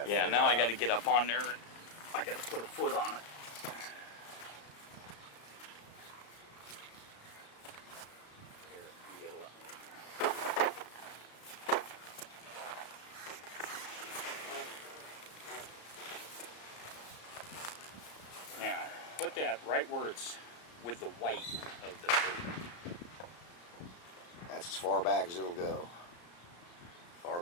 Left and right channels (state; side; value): late; right; 34 ms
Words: Yeah, figure now it I out. got to get up on there and I got to put a foot on it. Here, you get a lot. Now, put that right where it's with the white of the boot. That's as far back as it'll go. Far